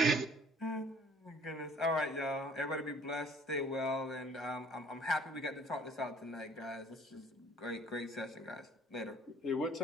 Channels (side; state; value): both; normal; correlation 0.55